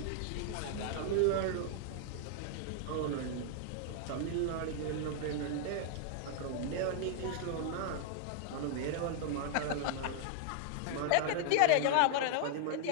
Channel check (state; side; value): different; both; correlation 0.00